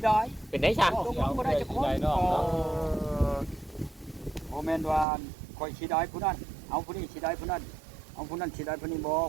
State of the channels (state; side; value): drops out; left; at 5.1 s